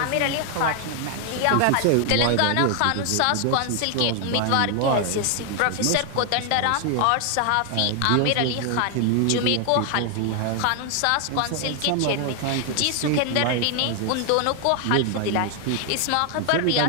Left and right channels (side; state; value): both; different; correlation 0.00